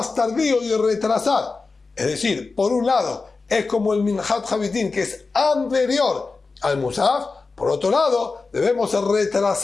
tardío y retrasar. Es decir, por un lado, es como el Minhat Habitim, que es anterior al Musaf. Por otro lado, debemos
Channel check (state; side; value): quieter; right; 4.1 dB